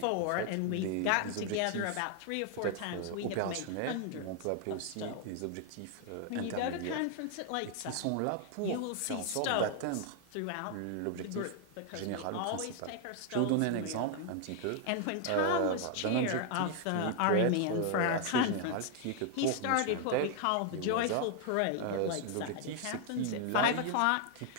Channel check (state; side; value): different; both; correlation 0.00